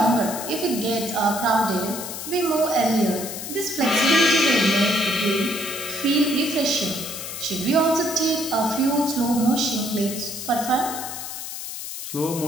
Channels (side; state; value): left; noise; hiss, 8 dB below the sound